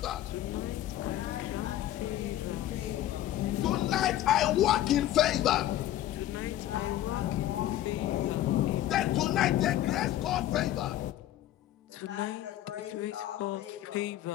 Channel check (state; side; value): quieter; right; 13.3 dB